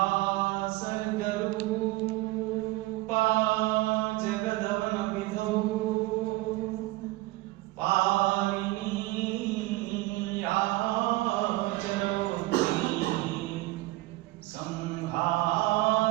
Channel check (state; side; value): quieter; left; 19.5 dB